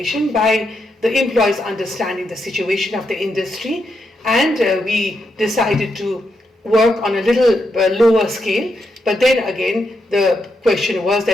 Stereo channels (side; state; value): both; normal; correlation 0.82